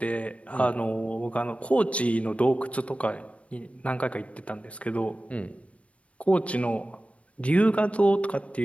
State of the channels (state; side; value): late; right; 0.063 ms